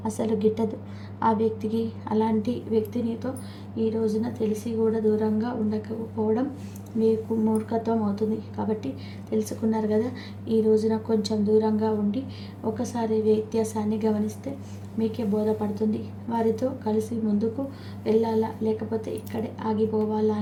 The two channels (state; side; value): identical; both; correlation 1.00